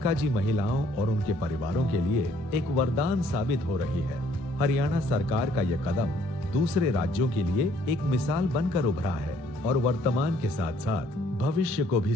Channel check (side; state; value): both; normal; correlation 0.63